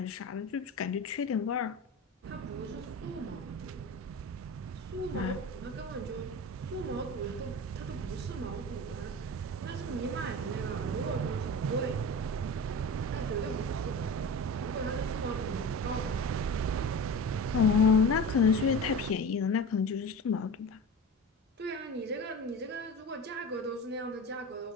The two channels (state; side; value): normal; both; correlation 0.32